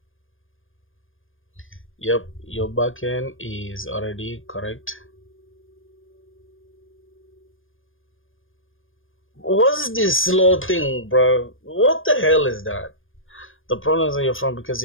Yep, your backend is already correct. What's this slow thing, bro? What the hell is that? The problem is on your front because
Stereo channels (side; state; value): right; late; 0.59 ms